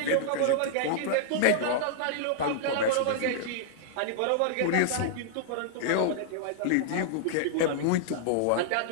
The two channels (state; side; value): different; both; correlation -0.01